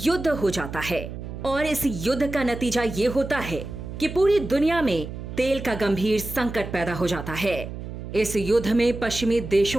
हो जाता है और इस युद्ध का नतीजा ये होता है कि पूरी दुनिया में तेल का गंभीर संकट पैदा हो जाता है। इस युद्ध में पश्चिमी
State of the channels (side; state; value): right; noise; hum, 9 dB below the sound